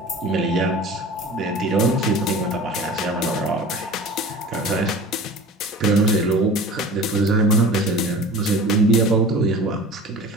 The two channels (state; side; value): normal; both; correlation 0.39